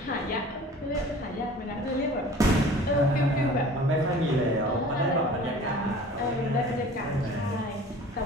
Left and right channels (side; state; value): both; normal; correlation 0.44